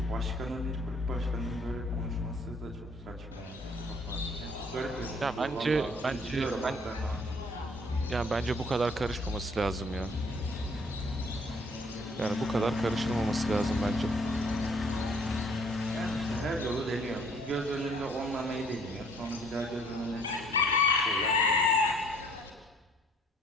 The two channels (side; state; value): both; normal; correlation 0.60